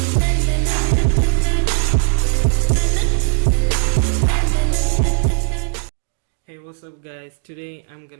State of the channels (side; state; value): left; silent; 67 dB below the other